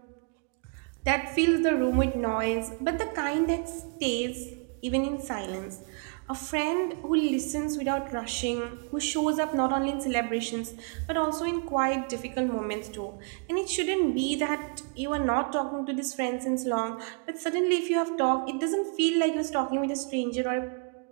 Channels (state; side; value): quieter; left; 40.0 dB